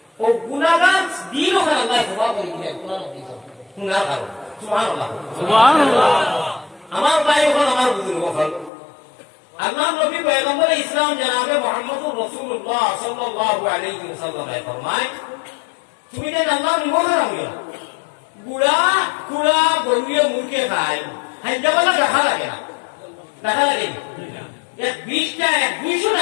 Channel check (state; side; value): drops out; right; at 8.7 s